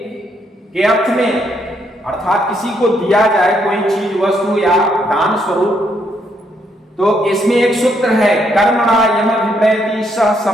के अर्थ में, अर्थात किसी को दिया जाए कोई चीज, वस्तु या दान स्वरूप, तो इसमें एक सूत्र है, कर्मणा यमभिप्रैति सह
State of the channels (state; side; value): normal; both; correlation 0.74